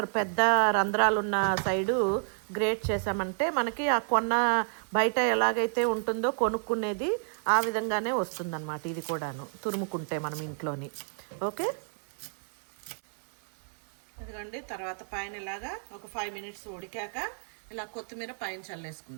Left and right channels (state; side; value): silent; left; digital silence